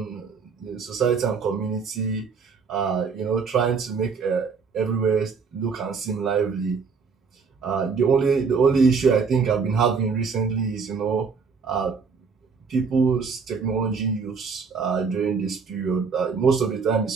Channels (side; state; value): left; quieter; 5.4 dB